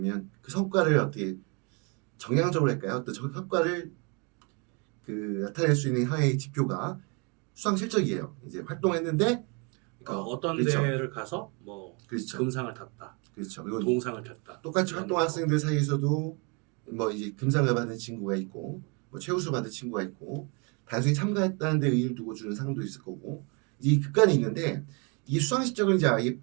그 성과를 어떻게 정량적으로 할까요? 어떤 성과를 그 나타낼 수 있는 하나의 지표가 수상 실적이에요. 이제 활동했는데 그러니까 어떤 그렇죠. 대회를 가서 뭐 그렇죠. 금상을 탔다, 그렇죠. 그리고 동상을 탔다. 똑같이 이런 활동한 거. 학생들 사이에서도 뭐 이제 금상을 받은 친구가 있고 뭐 최우수 받은 친구가 있고 단순히 참가했다는 데 의의를 두고 주는 상도 있을 거고 이 극간이 있는데 이 수상 실적을 이제 아예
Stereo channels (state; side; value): quieter; left; 32.7 dB